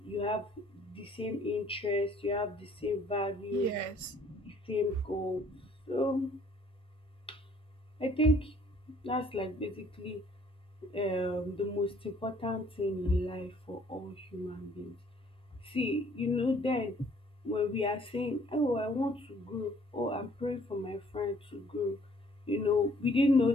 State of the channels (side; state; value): both; normal; correlation 0.59